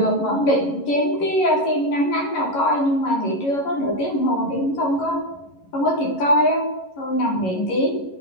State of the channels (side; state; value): right; late; 11 ms